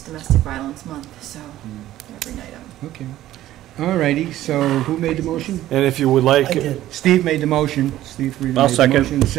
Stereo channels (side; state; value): left; quieter; 14.0 dB